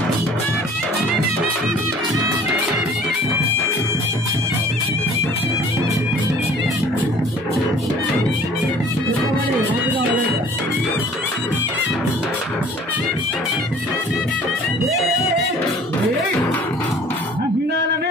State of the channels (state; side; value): normal; both; correlation 0.50